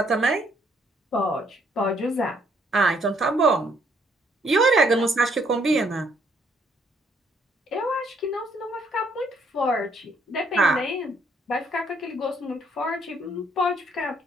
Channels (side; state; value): both; normal; correlation 0.69